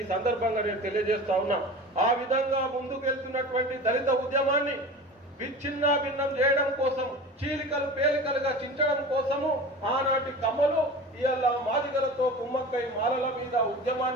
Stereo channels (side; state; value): both; normal; correlation 0.35